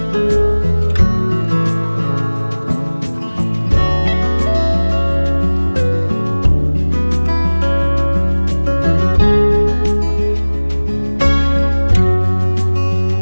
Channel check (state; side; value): inverted; both; correlation -1.00